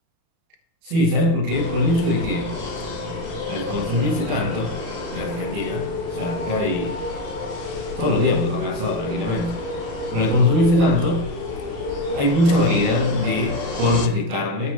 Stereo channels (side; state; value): left; late; 36 ms